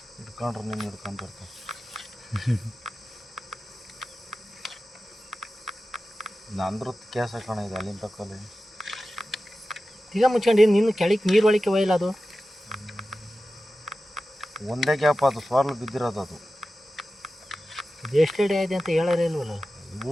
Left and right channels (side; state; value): both; normal; correlation 0.94